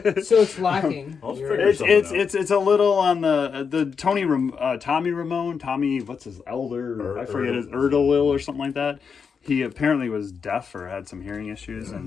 So it's lacking. I'll You're- figure something out. It's a little on the Tommy Ramone, what's his elder? I forget his Erdel or something like that. He apparently was deaf or had some hearing issues,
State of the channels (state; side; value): quieter; right; 6.0 dB